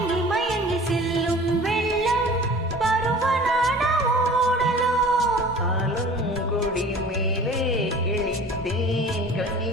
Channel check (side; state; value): both; normal; correlation 0.44